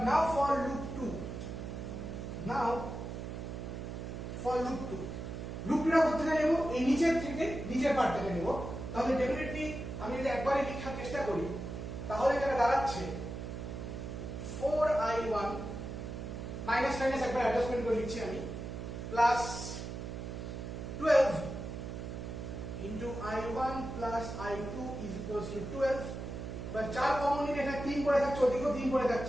now for loop 2, now for loop 2 টা করতে গেলে নেব এই নিচের থেকে নিচের পার্টটাকে নেব, তাহলে ডেফিনেটলি আমি যদি একবারে লেখার চেষ্টা করি তাহলে এটা দাঁড়াচ্ছে 4I1 মাইনাস মাইনাস একবার অ্যাডজাস্টমেন্ট করে লিখছি আমি, plus 12 into I1 plus I2 is equals to 12। এবার 4 কমন নিলে এখানে 3 পড়ে থাকছে, ওদিকেও 3 পড়ে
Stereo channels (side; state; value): right; noise; hum, 7 dB below the sound